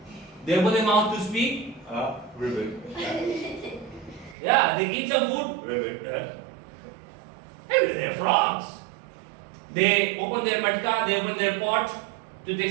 They open their mouth to speak, ribbit. Yeah, they eat some food, ribbit. Everywhere there are frogs. They open their matka, they open their pot to take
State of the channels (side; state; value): left; drops out; at 4.4 s